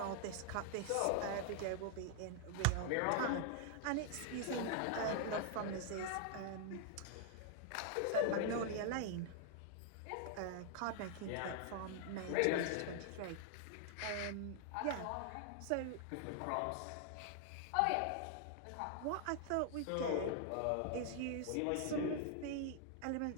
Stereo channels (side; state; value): both; different; correlation 0.00